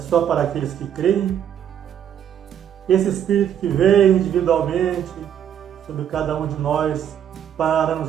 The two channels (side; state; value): left; quieter; 9.5 dB